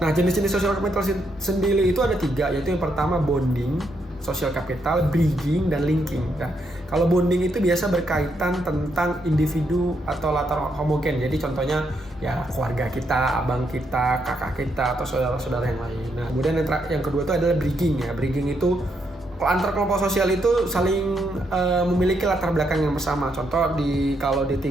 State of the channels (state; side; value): normal; both; correlation 0.78